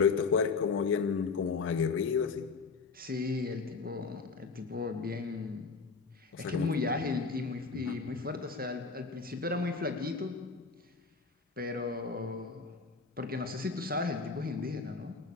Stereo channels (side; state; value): right; quieter; 4.7 dB